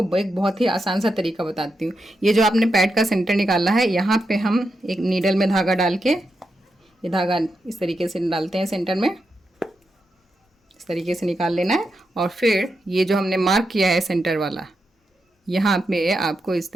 एक बहुत ही आसान सा तरीका बताती हूँ। ये जो आपने पैड का सेंटर निकाला है, यहाँ पे हम एक नीडल में धागा डाल के, ये धागा इस तरीके से डालते हैं सेंटर में, इस तरीके से निकाल लेना है। और फिर ये जो हमने मार्क किया है सेंटर वाला, यहाँ पे आपको इस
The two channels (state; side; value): normal; both; correlation 0.86